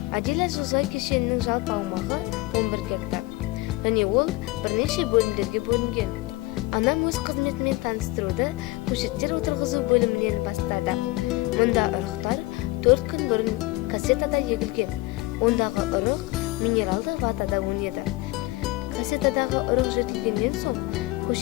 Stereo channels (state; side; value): quieter; right; 20.9 dB